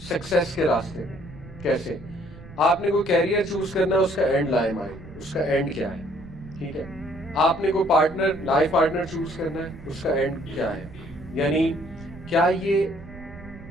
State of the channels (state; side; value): noise; right; rumble, 16 dB below the sound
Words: سکسیس کے راستے میں. کیسے؟ آپ نے کوئی کیریئر چوز کرنا ہے، اس کا اینڈ لائے مائنڈ، اس کا اینڈ کیا ہے. ٹھیک ہے، آپ نے کوئی پارٹنر، لائف پارٹنر چوز کرنا ہے، اس کا اینڈ کیا ہے. یعنی کیا یہ